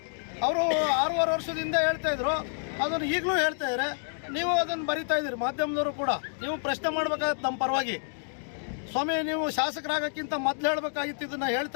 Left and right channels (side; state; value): right; silent; digital silence